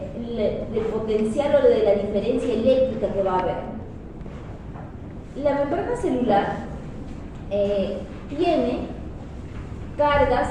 potencial o de la diferencia eléctrica que va a haber. La membrana celular tiene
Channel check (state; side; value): identical; both; correlation 1.00